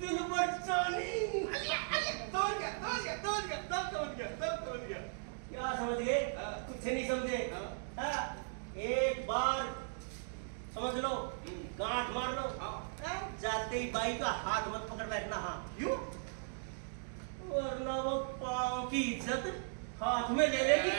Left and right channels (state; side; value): silent; left; digital silence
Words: बचानी। तोड़ गया। क्या समझ गए? कुछ नहीं समझे? एक बार समझ लो, गांठ मार लो, जाते ही बाई का हाथ मत पकड़ बैठना। हाँ क्यों? वरना वो पाँव की इज्जत हाथ में ले लेगी।